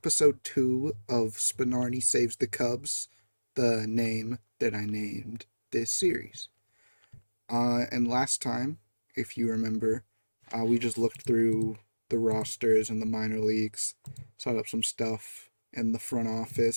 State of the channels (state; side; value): inverted; both; correlation -1.00